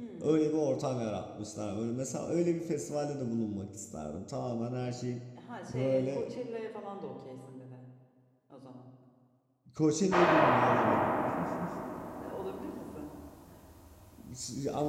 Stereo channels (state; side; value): identical; both; correlation 1.00